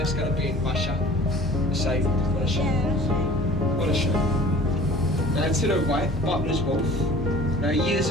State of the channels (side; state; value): both; normal; correlation 0.46